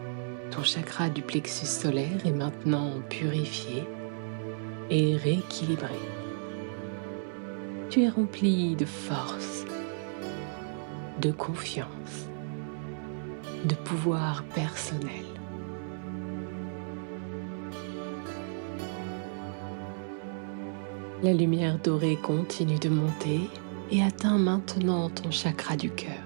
Ton chakra du plexus solaire est maintenant purifié et rééquilibré. Tu es rempli de force, de confiance, de pouvoir personnel. La lumière dorée continue de monter et atteint maintenant ton chakra du cœur,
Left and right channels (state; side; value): silent; left; 57 dB below the other